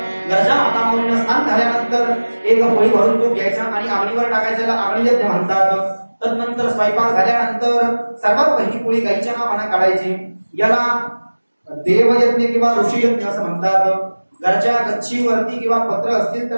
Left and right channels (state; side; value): inverted; both; correlation -1.00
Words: घरच्या मातामुलींना स्नान झाल्यानंतर एक पोळी भरून तूप घ्यायचा आणि आगळीवर टाकायचं, याला आगळीयज्ञ म्हणतात. तदनंतर स्वयंपाक झाल्यानंतर सर्वात पहिली पोळी गाईच्या नावाने काढायची, याला देवयज्ञ किंवा ऋषीयज्ञ असं म्हणतात. घरच्या गच्चीवरती किंवा पत्र असतील